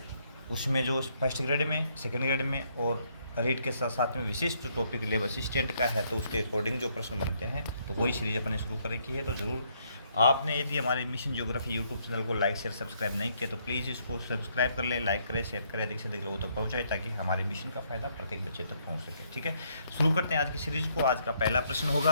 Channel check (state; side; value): inverted; both; correlation -0.71